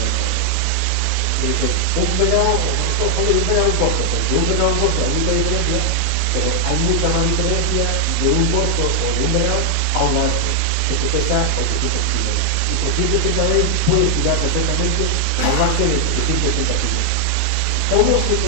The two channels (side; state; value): both; different; correlation 0.00